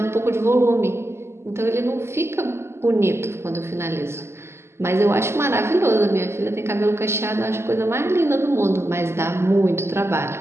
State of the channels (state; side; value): late; left; 0.12 ms